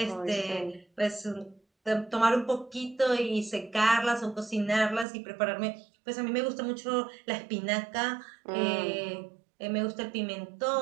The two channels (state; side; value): drops out; left; at 5.1 s